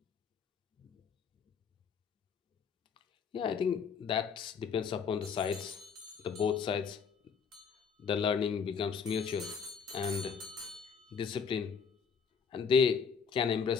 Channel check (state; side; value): quieter; right; 6.3 dB